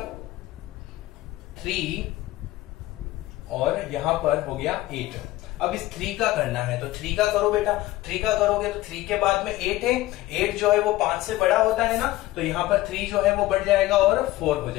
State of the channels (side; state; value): right; quieter; 16.9 dB